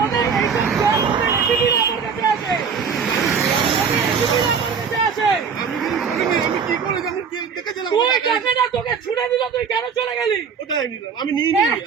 তোকে ছুড়ে দিল, তুই কেন চলে গেলি? আমি নিইনি,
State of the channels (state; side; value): quieter; left; 6.2 dB